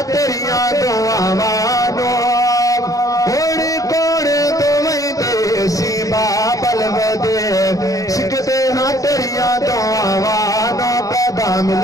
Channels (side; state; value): right; late; 0.17 ms